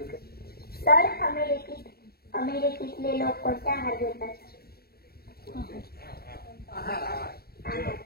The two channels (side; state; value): right; late; 0.45 ms